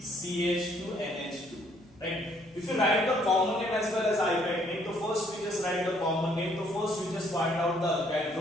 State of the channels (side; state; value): right; noise; hum, 28 dB below the sound